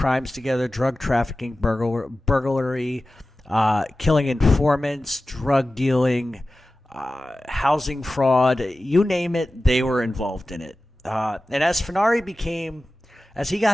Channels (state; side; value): normal; both; correlation 0.95